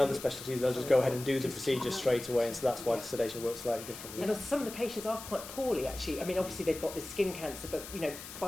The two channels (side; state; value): left; noise; hiss, 12 dB below the sound